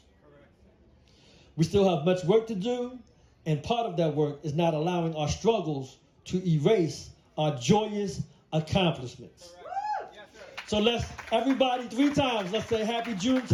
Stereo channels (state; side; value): identical; both; correlation 1.00